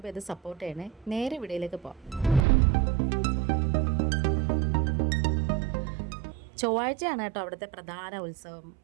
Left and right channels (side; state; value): left; drops out; at 2.5 s